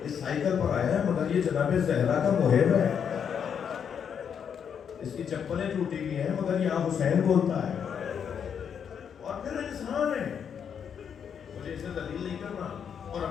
اس سائیکل پر آیا ہے مگر یہ جناب زہرا کا محب ہے، اس کی چپلیں ٹوٹی ہوئی ہیں مگر یہ حسین بولتا ہے، اور پھر انسان ہے، مجھے اسے ذلیل نہیں کرنا، اور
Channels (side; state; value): right; quieter; 7.6 dB